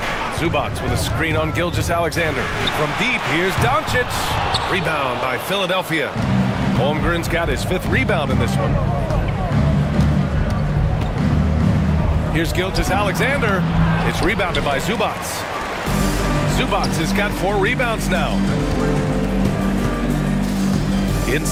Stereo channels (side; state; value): both; identical; correlation 1.00